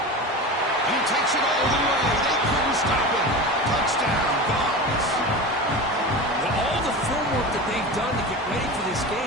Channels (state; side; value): normal; both; correlation 0.29